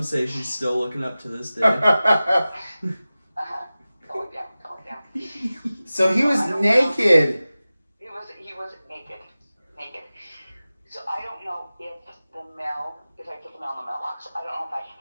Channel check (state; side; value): inverted; both; correlation -0.96